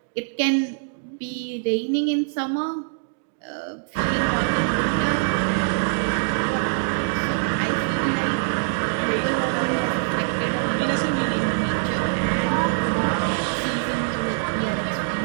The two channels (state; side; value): silent; left; digital silence